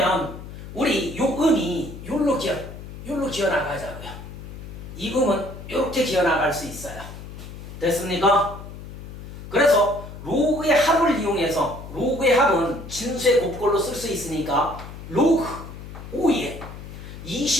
우리 요 음이 요로 기어 나가자고요. 이 음은 이렇게 기어 나갈 수 있어요. 됐습니까? 그래서 로그의 합을 이용해서 로그의 합은 진수의 곱꼴로 쓸 수 있으니까 로그 5의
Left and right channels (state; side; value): noise; left; hum, 12 dB below the sound